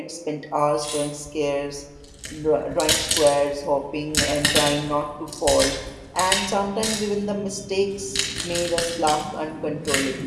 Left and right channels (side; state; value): both; identical; correlation 1.00